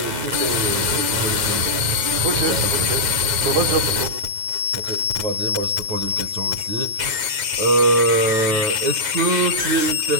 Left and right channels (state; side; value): late; left; 9.3 ms